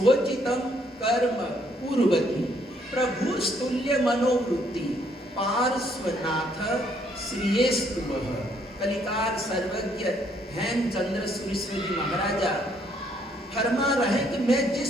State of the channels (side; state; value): both; normal; correlation 0.68